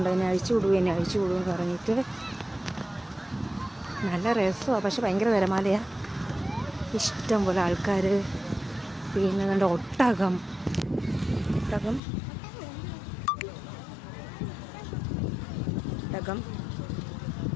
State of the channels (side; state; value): right; drops out; at 12.0 s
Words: എന്നെ അഴിച്ചു വിടുമെന്ന് പറഞ്ഞിട്ട്. നല്ല രസമാണ്, പക്ഷെ ഭയങ്കര തിരമാലയാണ്. ഇഷ്ടം പോലെ ആൾക്കാർ. പിന്നെ നല്ല ഒട്ടകം